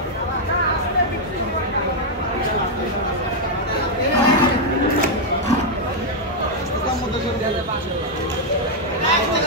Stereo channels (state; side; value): normal; both; correlation -0.01